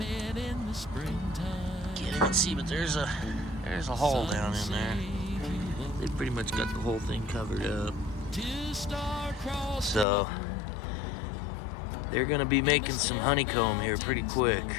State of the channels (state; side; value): drops out; right; at 10.1 s